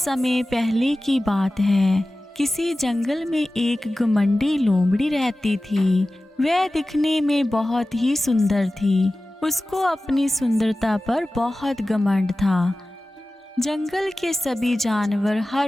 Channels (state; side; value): normal; both; correlation 0.96